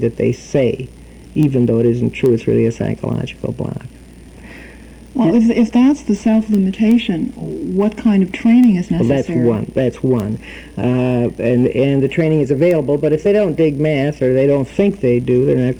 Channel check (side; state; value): both; identical; correlation 1.00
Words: they say, even though it isn't true. It's really a psychological block. Well, if that's the self-limitation, what kind of training is necessary? Well, that's one. And the training is available, but if they don't dig math or they don't think they do, they're not